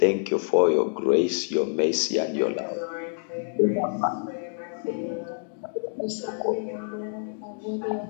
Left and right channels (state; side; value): silent; right; digital silence